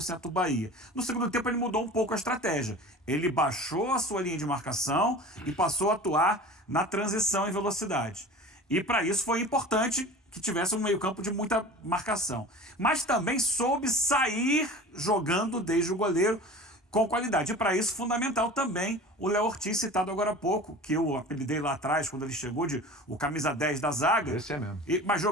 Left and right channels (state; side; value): normal; both; correlation 0.38